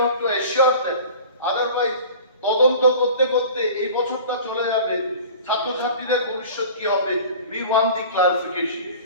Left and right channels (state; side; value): inverted; both; correlation -0.41